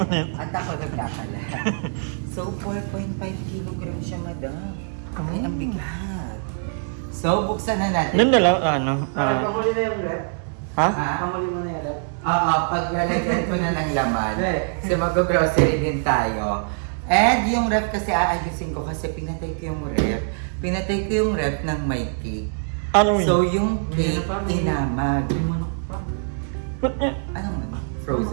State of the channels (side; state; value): left; silent; digital silence